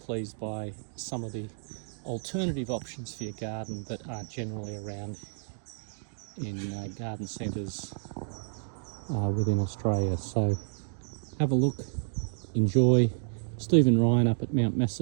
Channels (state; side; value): silent; left; digital silence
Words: by some of the alternative options for your garden that aren't generally around in garden centres within Australia. So have a look, enjoy. Stephen Ryan up at Mount